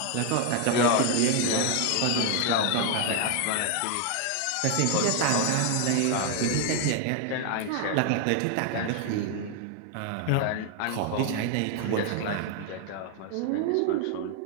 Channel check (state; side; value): different; both; correlation 0.00